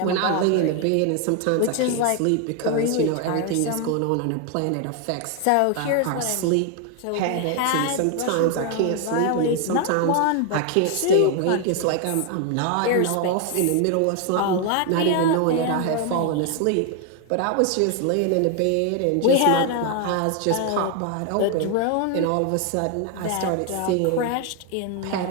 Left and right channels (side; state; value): both; different; correlation 0.01